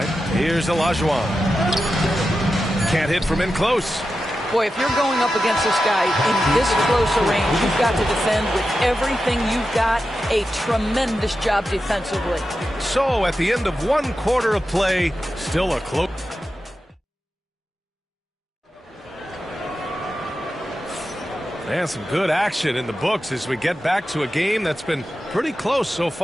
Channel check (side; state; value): both; normal; correlation 0.91